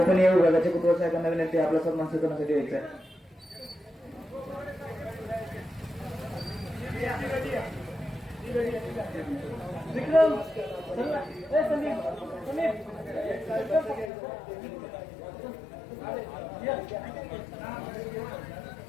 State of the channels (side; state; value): right; drops out; at 14.1 s